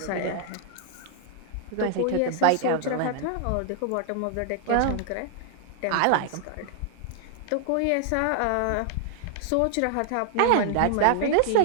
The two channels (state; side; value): different; both; correlation 0.00